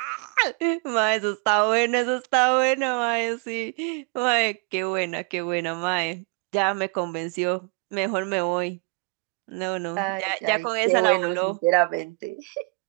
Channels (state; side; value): quieter; left; 30.9 dB